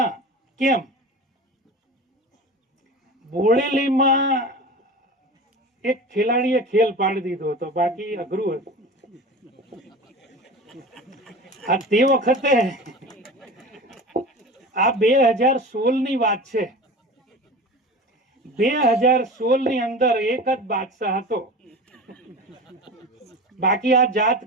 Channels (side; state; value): both; normal; correlation 0.33